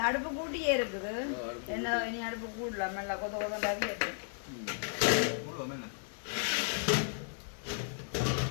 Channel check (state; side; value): silent; right; digital silence